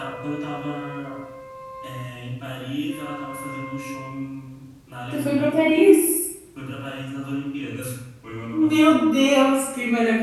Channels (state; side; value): identical; both; correlation 1.00